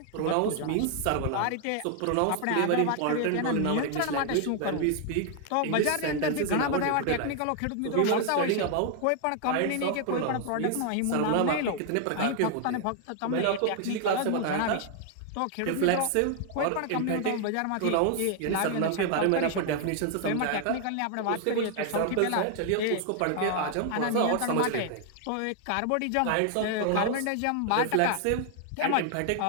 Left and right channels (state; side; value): different; both; correlation 0.00